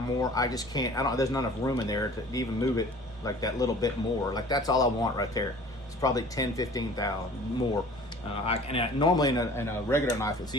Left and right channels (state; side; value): normal; both; correlation 0.47